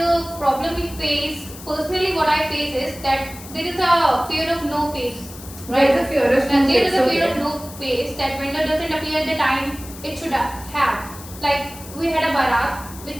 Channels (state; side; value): noise; left; hiss, 16 dB below the sound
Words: problem we face, personally what I face is that there is a fear of no face. There is a fear of no face. There is a fear of no face that vendor doesn't appear at the time it should have. Like we had a barat which